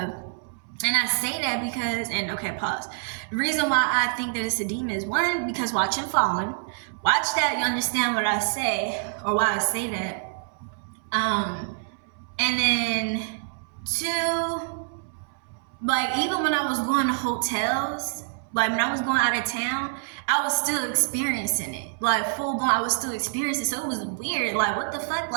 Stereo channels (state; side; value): silent; left; 61 dB below the other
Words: I say that because, and okay, pause. The reason why I think that it's a demon is, one, because watching Fallen. Watch that, you understand what I say, or why I say that. And then two, like even when I was going to hotels, like when I was going out of town, I was still experiencing it. Like full blown, I was still experiencing it. So it was weird. Like what the fuck?